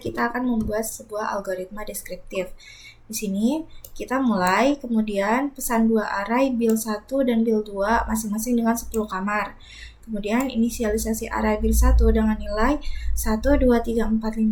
kita akan membuat sebuah algoritma deskriptif. Di sini kita mulai, kemudian pesan dua array bil 1 dan bil 2 masing-masing dengan 10 kamar. Kemudian inisialisasi array bil 1 dengan nilai 1, 2, 3, 4, 5,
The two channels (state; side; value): identical; both; correlation 1.00